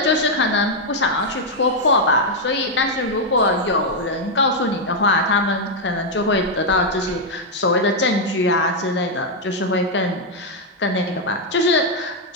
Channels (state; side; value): normal; both; correlation 0.00